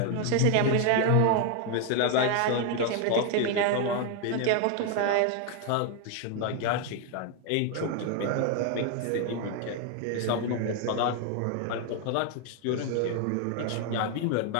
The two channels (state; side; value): different; both; correlation 0.01